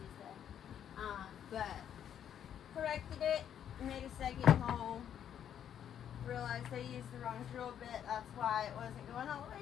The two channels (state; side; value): quieter; right; 9.4 dB